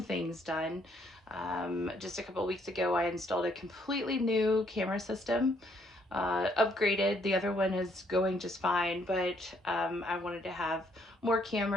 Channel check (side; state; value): both; normal; correlation 0.69